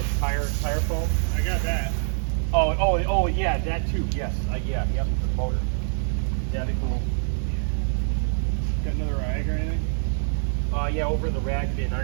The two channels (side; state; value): left; silent; digital silence